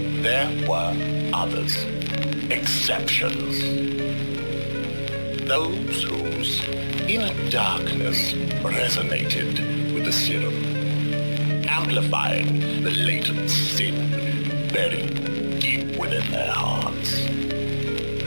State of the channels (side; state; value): both; inverted; correlation -1.00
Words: there were others, exceptions. Those whose inner darkness resonated with the serum, amplifying the latent sin buried deep within their hearts.